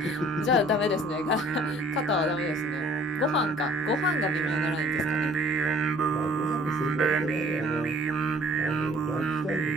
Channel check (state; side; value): normal; both; correlation 0.54